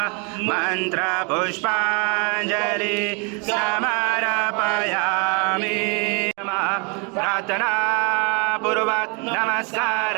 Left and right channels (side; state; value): left; quieter; 33.7 dB